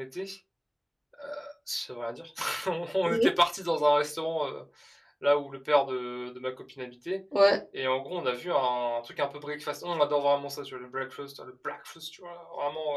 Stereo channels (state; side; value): identical; both; correlation 1.00